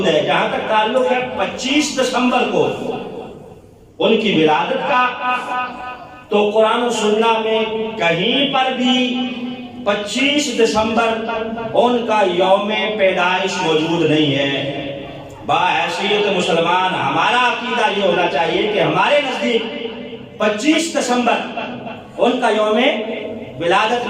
ہے۔ جہاں تک تعلق ہے 25 دسمبر کو ان کی ولادت کا، تو قرآن و سنت میں کہیں پر بھی 25 دسمبر ان کا یوم پیدائش موجود نہیں ہے۔ بحیثیت مسلمان ہمارا عقیدہ یہ ہونا چاہیے کہ ہمارے نزدیک 25 دسمبر ان کا یوم ولادت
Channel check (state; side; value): identical; both; correlation 1.00